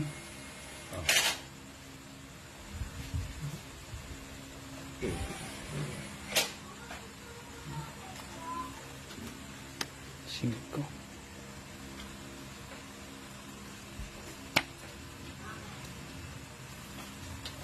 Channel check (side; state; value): both; identical; correlation 1.00